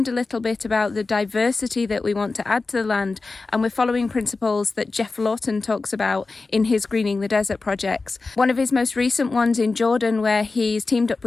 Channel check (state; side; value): quieter; right; 3.8 dB